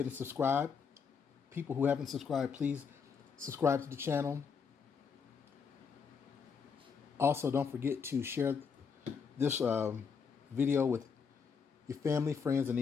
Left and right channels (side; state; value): right; quieter; 6.1 dB